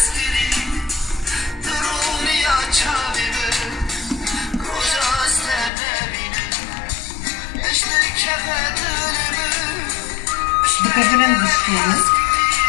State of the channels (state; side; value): drops out; right; at 5.7 s